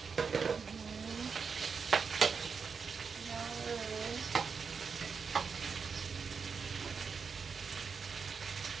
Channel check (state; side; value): quieter; left; 5.6 dB